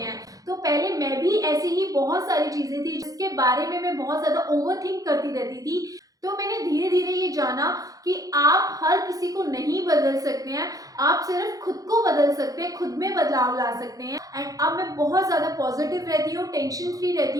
तो पहले मैं भी ऐसी ही बहुत सारी चीजें थी जिसके बारे में मैं बहुत ज्यादा ओवरथिंक करती रहती थी। तो मैंने धीरे धीरे ये जाना कि आप हर किसी को नहीं बदल सकते हैं, आप सिर्फ खुद को बदल सकते हैं, खुद में बदलाव ला सकते हैं। एंड अब मैं बहुत ज़्यादा पॉजिटिव रहती हूँ, टेंशन फ्री रहती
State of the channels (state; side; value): late; left; 0.17 ms